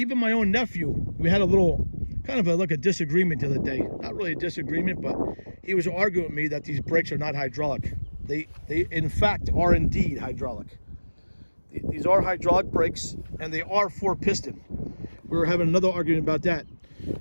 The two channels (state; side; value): inverted; both; correlation -1.00